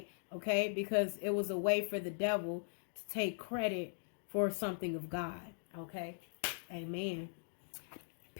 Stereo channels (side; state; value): right; silent; digital silence